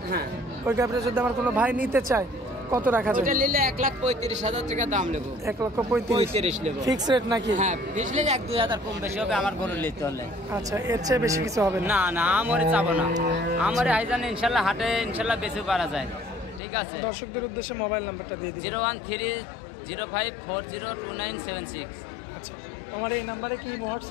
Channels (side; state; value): right; drops out; at 16.6 s